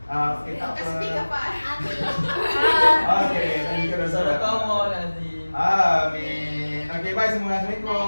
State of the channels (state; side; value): inverted; both; correlation -1.00